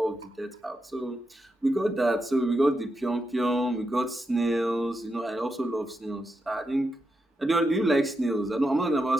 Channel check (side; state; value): both; normal; correlation 0.85